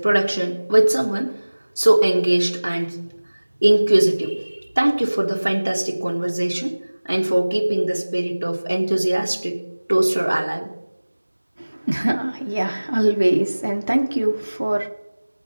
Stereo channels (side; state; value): both; inverted; correlation -1.00